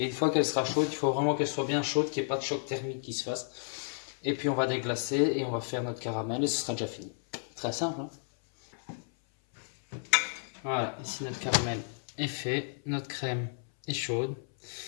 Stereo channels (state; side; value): silent; right; 56 dB below the other